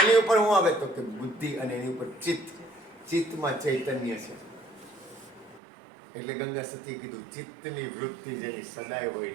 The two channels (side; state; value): left; drops out; at 5.6 s